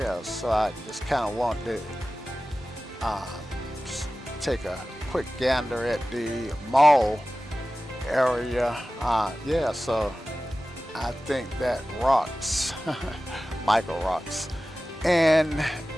so I just kind of want to take a quick gander at the mall area. Yeah, so I think that rocks. Michael rocks. And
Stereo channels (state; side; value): normal; both; correlation 0.96